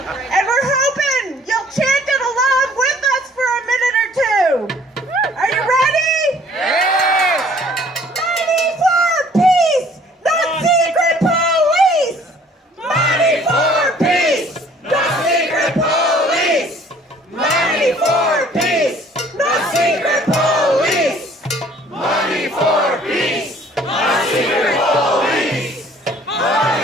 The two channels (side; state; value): both; normal; correlation 0.56